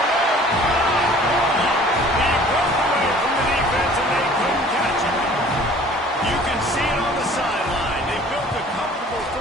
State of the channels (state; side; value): normal; both; correlation 0.50